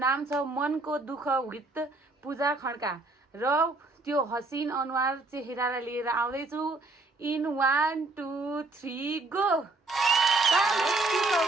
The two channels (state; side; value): quieter; left; 3.3 dB